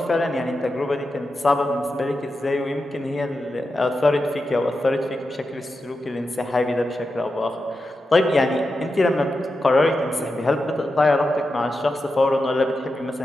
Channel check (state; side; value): normal; both; correlation 0.89